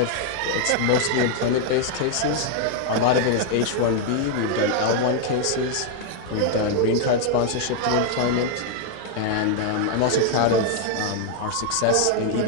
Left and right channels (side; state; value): both; different; correlation 0.00